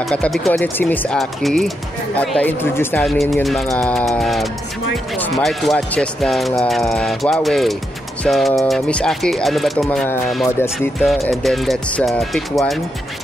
katabi ko ulit si Miss Aki at introduce namin yung mga smartwatches ng Huawei. So, Miss Aki, ano ba itong mga models dito? And then let's pick one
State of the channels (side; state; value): both; normal; correlation 0.83